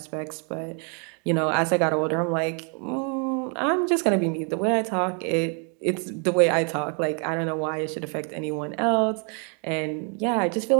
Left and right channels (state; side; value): quieter; left; 38.6 dB